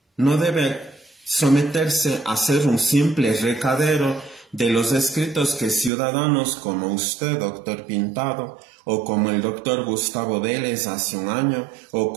no debe someterse a ser un simple recadero de los escritos que ciudadanos como usted, doctor Pintado, o como el doctor Gustavo Vélez hace un año, o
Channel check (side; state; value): left; drops out; at 5.9 s